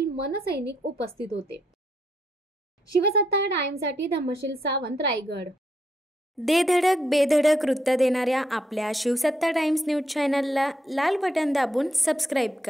मनसैनिक उपस्थित होते। शिवसत्ता टाइम्ससाठी धम्मशील सावंत, रायगड। दे धडक बेधडक वृत्त देणाऱ्या आपल्या शिवसत्ता टाइम्स न्यूज चॅनलला लाल बटन दाबून सबस्क्राईब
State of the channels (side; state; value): both; normal; correlation 0.77